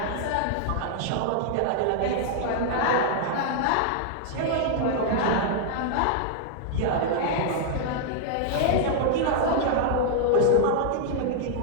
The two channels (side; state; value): both; different; correlation -0.01